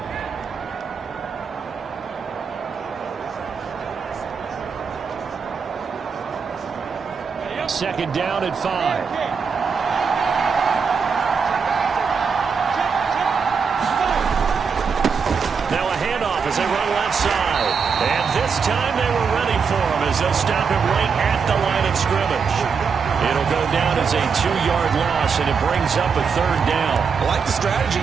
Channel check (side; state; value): left; quieter; 5.8 dB